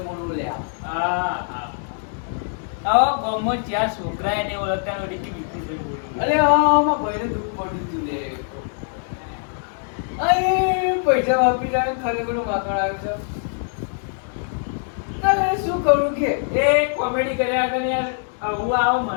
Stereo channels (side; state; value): right; silent; digital silence